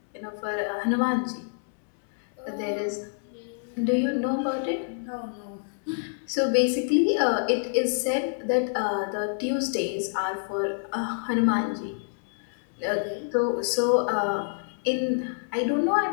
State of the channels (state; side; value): silent; right; 60 dB below the other